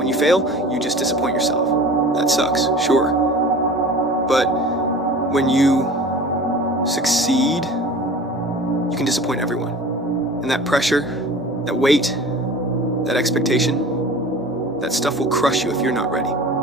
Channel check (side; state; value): both; normal; correlation 0.40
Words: you fail, you just disappoint yourself. That sucks, sure. But when you succeed, you can disappoint everyone. And that pressure, that weight, that expectation, that stuff will crush you if you're not ready.